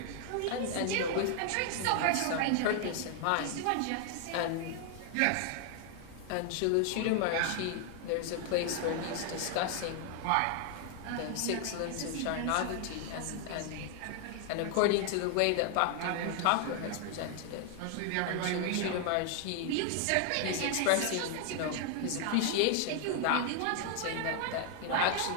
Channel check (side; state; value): both; different; correlation 0.00